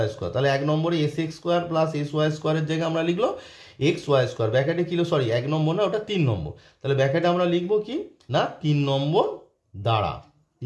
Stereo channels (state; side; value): identical; both; correlation 1.00